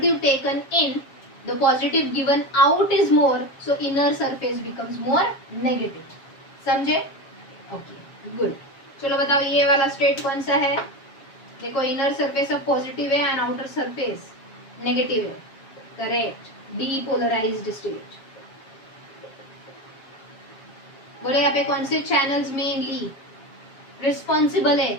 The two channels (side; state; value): right; late; 7.4 ms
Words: taken in, the positive given out is more, so inner surface becomes more negative. समझे? Okay, good. चलो बताओ ये वाला स्टेट कौन सा है? देखो, इनर सरफेस अब पॉजिटिव है एंड आउटर सरफेस नेगेटिव है. करेक्ट. Depolarized state. बोले यहाँ पे कौन से चैनल्स मेनली रिस्पॉन्सिबल है